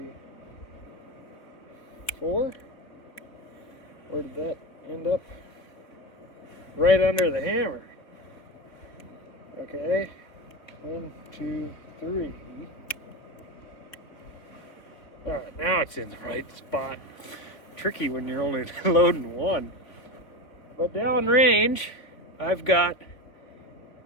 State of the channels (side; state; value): right; late; 3.4 ms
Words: 4. Where did that end up? Right under the hammer. Okay. 1, 2, 3. Alright, now it's in the right spot. Tricky when you're only loading one. But downrange, I've got